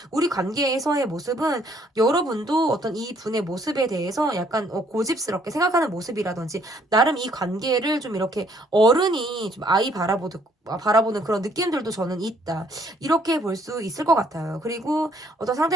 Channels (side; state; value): both; normal; correlation 0.65